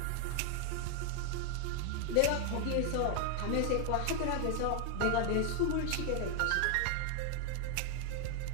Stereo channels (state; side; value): different; both; correlation 0.00